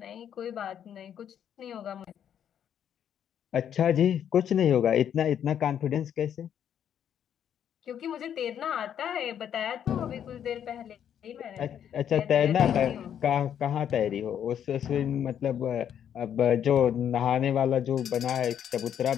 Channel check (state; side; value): quieter; right; 9.3 dB